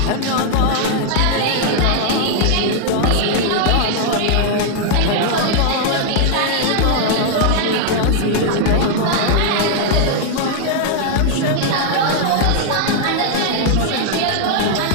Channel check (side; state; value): both; different; correlation 0.00